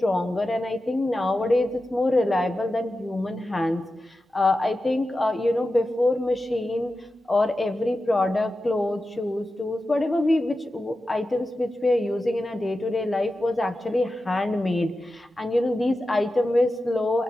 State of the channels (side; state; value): both; normal; correlation 0.92